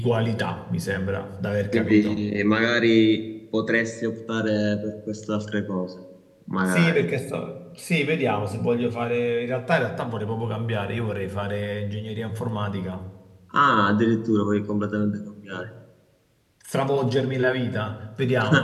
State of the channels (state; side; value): identical; both; correlation 1.00